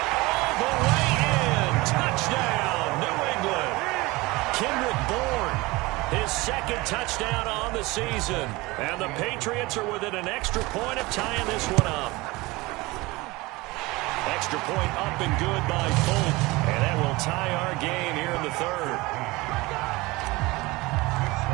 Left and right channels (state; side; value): quieter; left; 22.0 dB